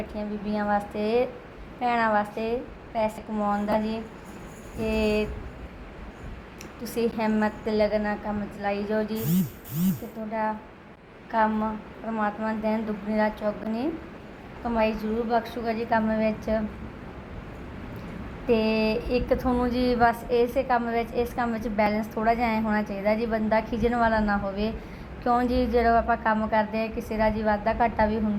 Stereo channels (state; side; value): identical; both; correlation 1.00